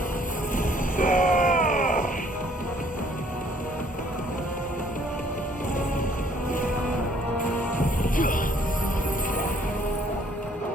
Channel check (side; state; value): both; normal; correlation 0.62